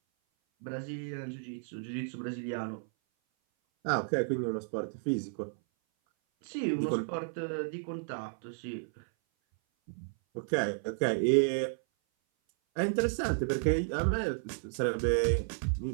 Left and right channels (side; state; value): left; silent; 56 dB below the other